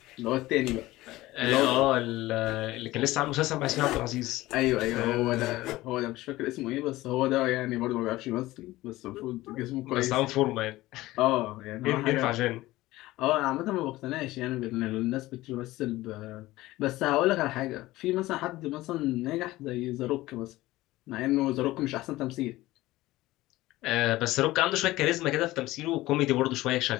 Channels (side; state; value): right; quieter; 17.8 dB